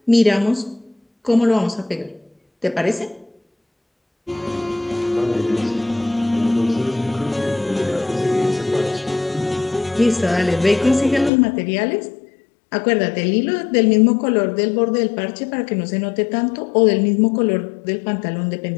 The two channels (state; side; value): drops out; right; at 11.3 s